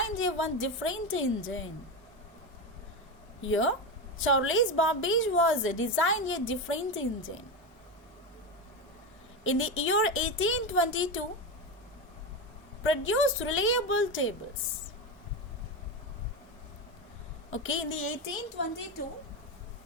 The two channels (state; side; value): normal; both; correlation 0.16